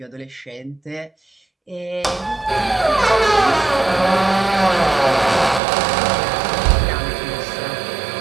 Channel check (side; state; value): left; drops out; at 5.6 s